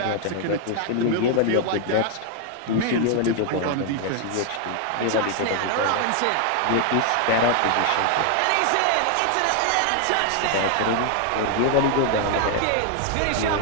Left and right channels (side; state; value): both; different; correlation 0.00